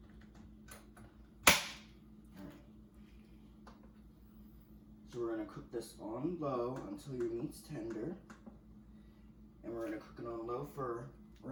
So we're going to cook this on low until your meat's tender. And we're going to cook it on low we're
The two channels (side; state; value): both; identical; correlation 1.00